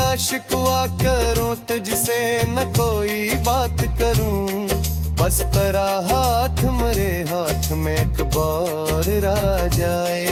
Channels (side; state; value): both; identical; correlation 1.00